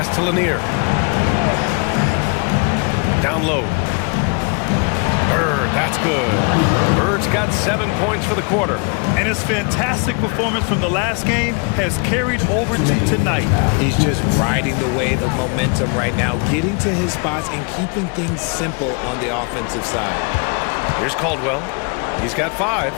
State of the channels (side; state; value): right; quieter; 34.1 dB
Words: to Lanier. Down low. Bird, that's good. Bird's got 7 points for the quarter. And his fantastic performance from the last game has carried over to tonight. He's just riding the wave of momentum right now, getting to his spots and keeping things simple on the offensive side. Here's Caldwell. He's got 5.